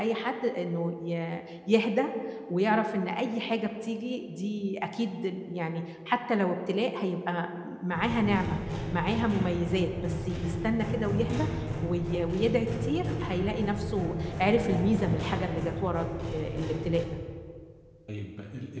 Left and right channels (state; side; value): identical; both; correlation 1.00